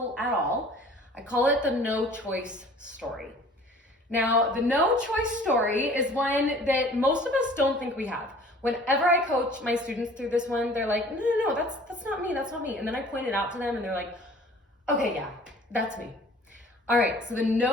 at all, I call it the no choice story. Now, the no choice story is one that most of us don't think we have. Whenever I coach my students through this one, they're like, no, that's not me, that's not me. And then I point it out to them and they're like, okay, yeah, that's me. All right, so the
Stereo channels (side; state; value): both; normal; correlation 0.49